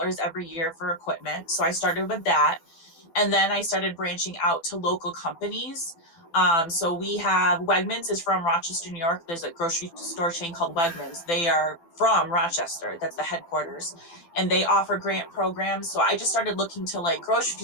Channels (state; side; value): late; right; 12 ms